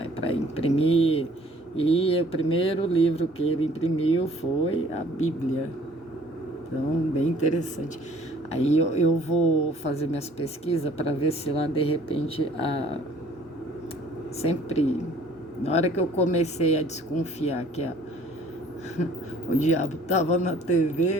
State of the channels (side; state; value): both; normal; correlation 0.55